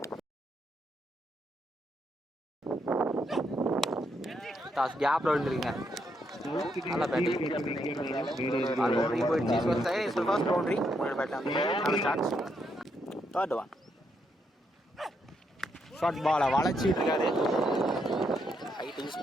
டாஸ் கேப்பில் விழுந்துருக்கீங்க நல்லா பேட்டிங் போயிடுச்சு ஃபர்ஸ்ட் பவுண்டரி முன்னாடி பேட்டில் நல்ல சான்ஸ் தேர்ட் ஒன் ஷார்ட் பாலை வளைச்சிட்டு இருக்காரு ஹைட் யூஸ்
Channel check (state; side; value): normal; both; correlation 0.78